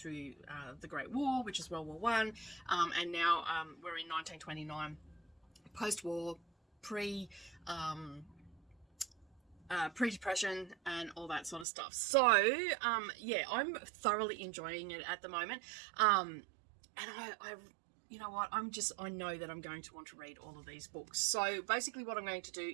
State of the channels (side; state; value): left; drops out; at 11.7 s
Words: the Great War, which is World War One, and now we're in 1929, post-war, pre-depression and all that sort of stuff. So yeah, I'm thoroughly enjoying it at the moment, and I you know what, I know that I'm going to want to read all of these books. So basically what I'm going to do